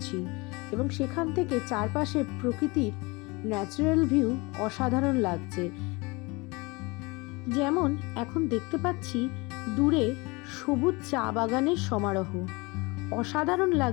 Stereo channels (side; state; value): right; quieter; 25.7 dB